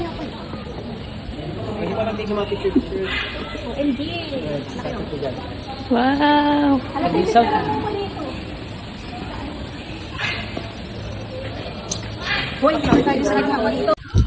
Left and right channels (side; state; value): both; identical; correlation 1.00